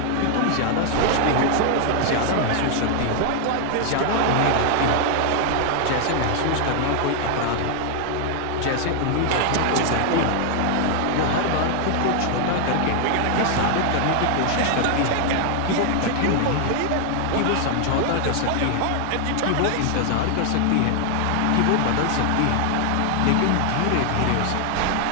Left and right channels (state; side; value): different; both; correlation 0.00